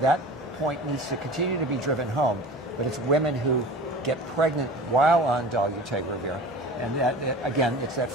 point needs to continue to be driven home, but it's women who get pregnant while on dolutegravir. And that, again, it's that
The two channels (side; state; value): both; normal; correlation 0.37